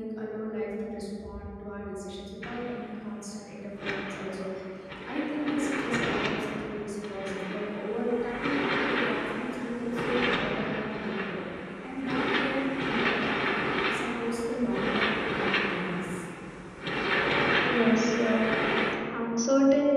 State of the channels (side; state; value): both; identical; correlation 1.00